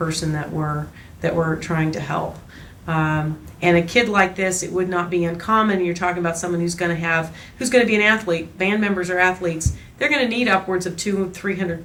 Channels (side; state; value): both; identical; correlation 1.00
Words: that we're trying to help. And a kid like this, it would not be uncommon. You're talking about someone who's going to be an athlete. Band members are athletes. They're going to need upwards of 200-300